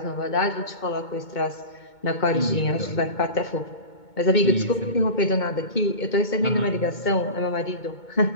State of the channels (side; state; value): right; late; 2.2 ms